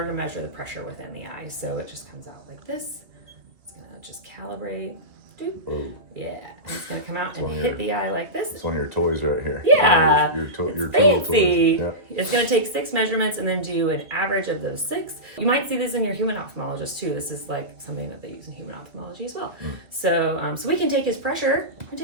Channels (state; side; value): late; left; 2.2 ms